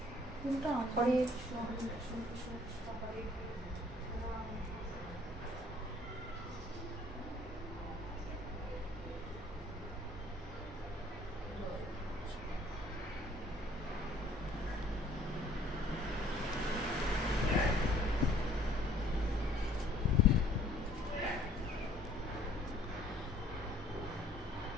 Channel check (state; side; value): normal; both; correlation 0.58